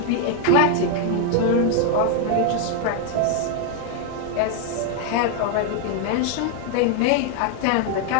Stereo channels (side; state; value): both; different; correlation 0.00